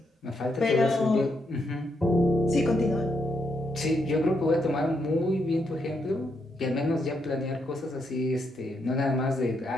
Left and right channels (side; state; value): both; normal; correlation 0.79